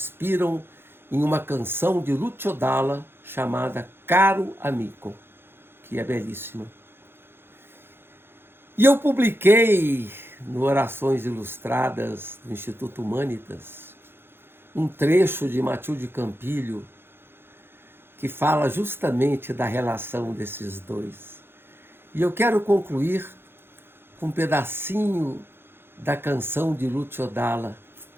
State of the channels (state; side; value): late; left; 0.11 ms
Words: em uma canção de Lucio Dalla chamada Caro Amico, que é belíssima. E eu publiquei no Orações Ilustradas do Instituto Humanitas um trecho de Matilde Campilho que fala justamente da relação desses 2. E eu quero concluir com um pedacinho da canção de Lucio Dalla